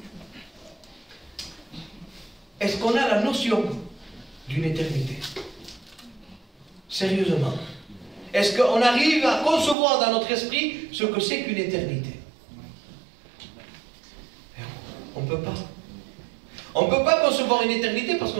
Est-ce qu'on a la notion d'une éternité? Sérieusement. Est-ce qu'on arrive à concevoir dans notre esprit ce que c'est qu'une éternité? On ne peut pas. On ne peut pas concevoir une éternité parce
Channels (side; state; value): left; drops out; at 9.8 s